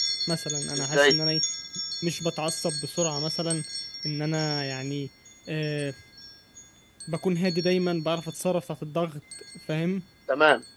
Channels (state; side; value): identical; both; correlation 1.00